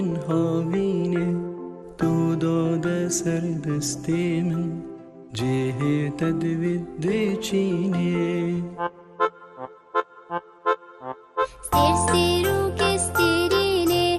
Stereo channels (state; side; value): identical; both; correlation 1.00